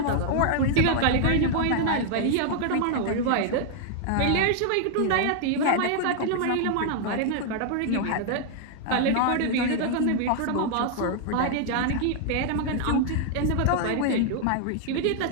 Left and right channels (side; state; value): both; different; correlation 0.00